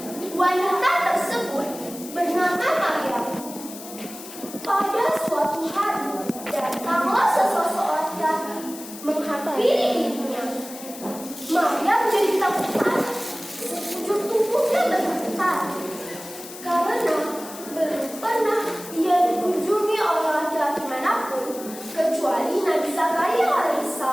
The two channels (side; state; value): left; noise; hiss, 14 dB below the sound